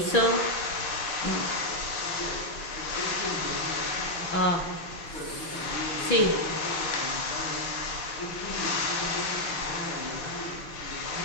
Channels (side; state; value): right; late; 6.1 ms